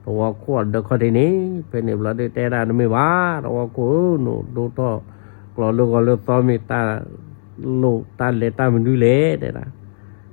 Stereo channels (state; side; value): silent; right; digital silence